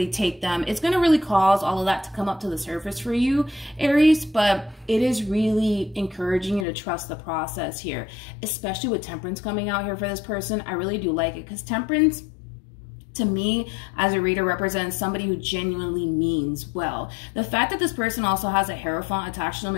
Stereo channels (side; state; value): right; drops out; at 6.7 s